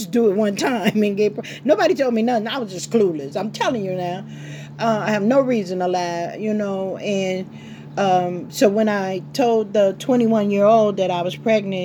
do it one time and get. Nobody told me nothing. I was just clueless. I'm telling you now. I have no reason to lie, and so when I told the 21-year-old that I was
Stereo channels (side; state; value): both; identical; correlation 1.00